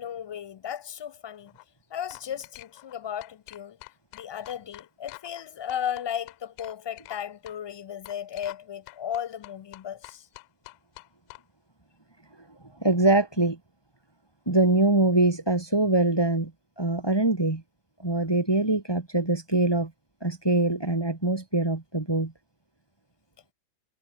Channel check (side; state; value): right; late; 1.2 ms